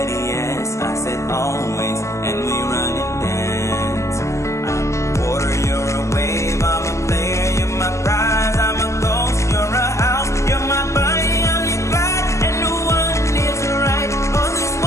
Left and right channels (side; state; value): right; late; 0.14 ms